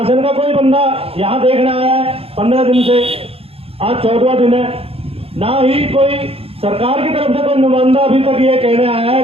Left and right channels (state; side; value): late; left; 0.28 ms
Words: का कोई बंदा यहाँ देखने आया है 15 दिन से, आज 14वां दिन है, ना ही कोई सरकार की तरफ से कोई नुमाइंदा अभी तक ये कहने आया है